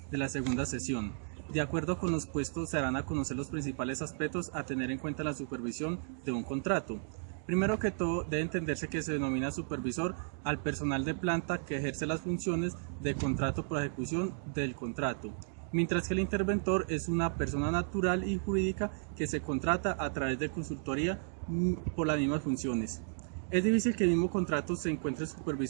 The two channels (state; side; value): silent; left; digital silence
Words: de la segunda sesión. De acuerdo con los puestos, se darán a conocer los principales aspectos a tener en cuenta en la supervisión de un contrato. Primero que todo, debe entenderse que se denomina supervisor al personal de planta que ejerce las funciones de contrato por ejecución del contrato, mientras que el interventor es una persona natural y jurídica que se contrata a través de consultoría por las mismas funciones. Es difícil que el mismo contrato se encuentre